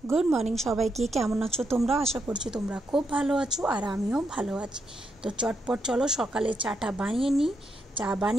गुड मॉर्निंग सबाइके केमन आछो तोमरा आशा करछि तोमरा खूब भालो आछो और आमिओ भालो आछि। तो चटपट चलो सकाले चाटा बानिये नी। चा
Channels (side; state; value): both; normal; correlation 0.80